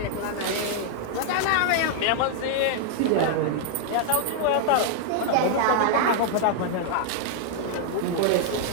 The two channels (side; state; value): both; different; correlation -0.01